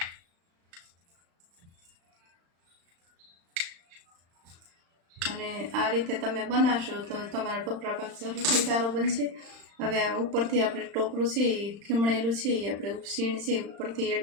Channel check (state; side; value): late; left; 35 ms